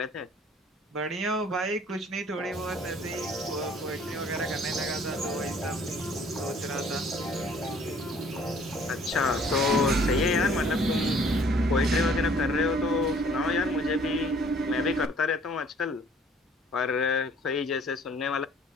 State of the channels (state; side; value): normal; both; correlation 0.57